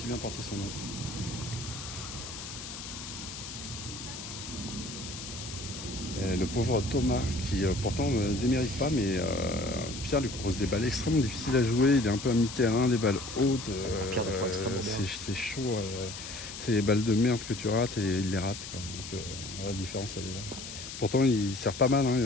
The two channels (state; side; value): noise; left; hiss, 10 dB below the sound